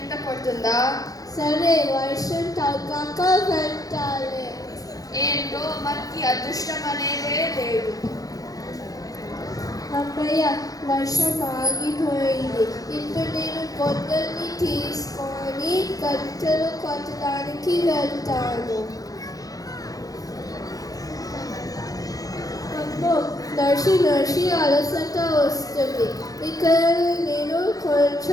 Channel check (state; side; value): late; right; 0.17 ms